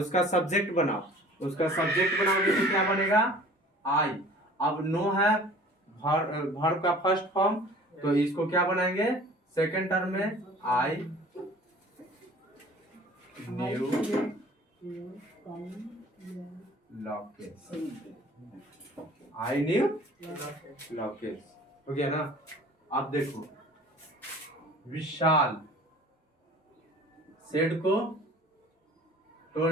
सब्जेक्ट बनाओ, उसका सब्जेक्ट बनाओगे तो क्या बनेगा, आई। अब नो है वर्ब का फर्स्ट फॉर्म, तो इसको क्या बनाएंगे सेकंड टर्म में, I knew Lokesh, I knew Lokesh. हो गया ना। अब देखो विशाल सेड को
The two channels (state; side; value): normal; both; correlation 0.47